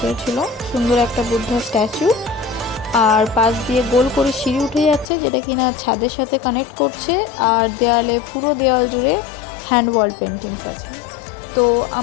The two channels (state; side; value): drops out; right; at 5.1 s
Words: ছিল। সুন্দর একটা বুদ্ধা স্ট্যাচু, আর পাশ দিয়ে গোল করে সিঁড়ি উঠে যাচ্ছে, যেটা কিনা ছাদের সাথে কানেক্ট করছে। আর দেয়ালে, পুরো দেয়াল জুড়ে হ্যান্ড ওয়াল পেন্টিংস আছে। তো